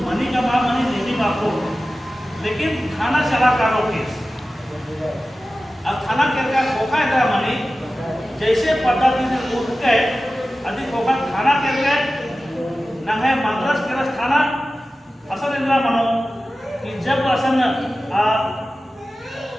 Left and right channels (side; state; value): both; normal; correlation 0.95